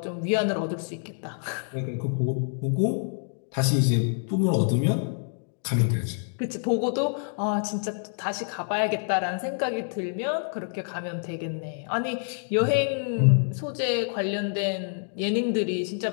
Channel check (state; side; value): silent; right; 60 dB below the other